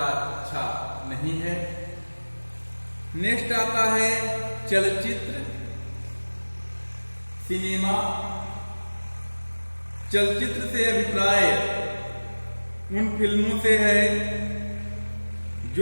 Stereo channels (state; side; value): inverted; both; correlation -1.00